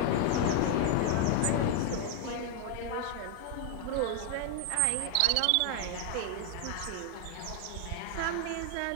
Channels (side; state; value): both; different; correlation 0.00